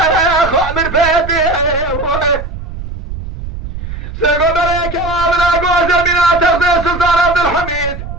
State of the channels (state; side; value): noise; right; rumble, 9 dB below the sound